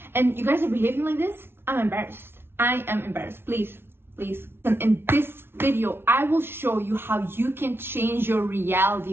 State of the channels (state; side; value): late; left; 0.11 ms